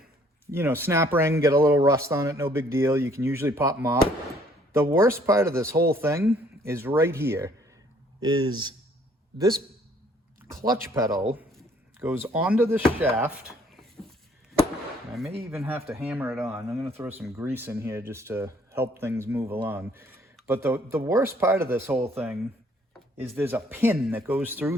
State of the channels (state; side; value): normal; both; correlation 0.62